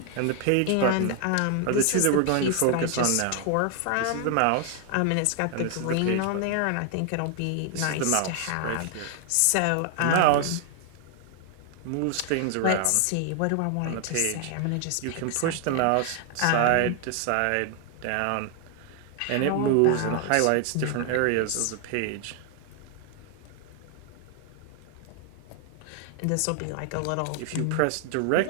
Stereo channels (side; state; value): both; different; correlation 0.00